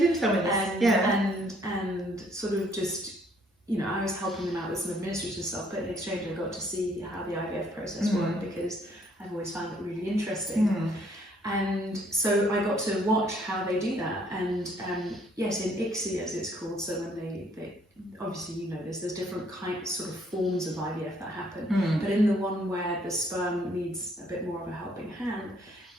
tell me this. And sort of just, you know, I was helping them out with some administrative stuff, but in exchange I got to see how the IVF process worked, because I've always found it really interesting. And so I got to watch how they do that. And yes, in ICSI as it's called, so when they obviously, you know this, there's different sort of forms of IVF that happen. But in the one where the sperm needs a bit more of a helping hand,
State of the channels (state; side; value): normal; both; correlation 0.65